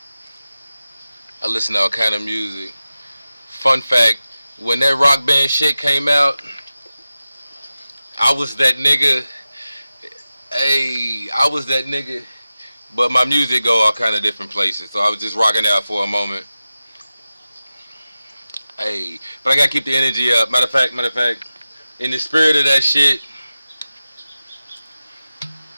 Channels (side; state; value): both; inverted; correlation -0.94